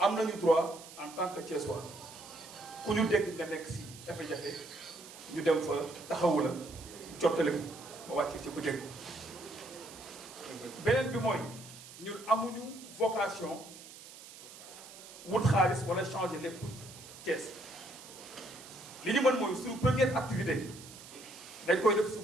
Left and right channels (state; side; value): noise; right; hiss, 16 dB below the sound